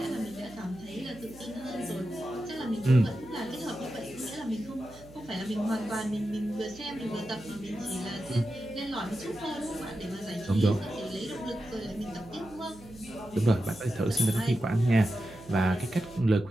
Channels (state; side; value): noise; right; hum, 20 dB below the sound